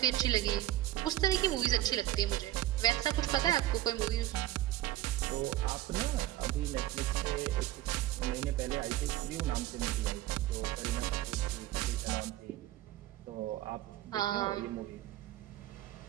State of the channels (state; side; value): quieter; left; 14.2 dB